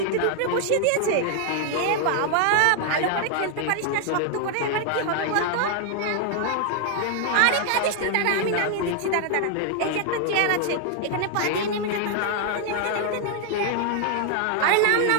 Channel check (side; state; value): both; different; correlation 0.00